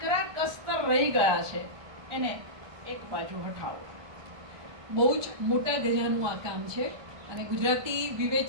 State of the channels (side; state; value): left; late; 1.2 ms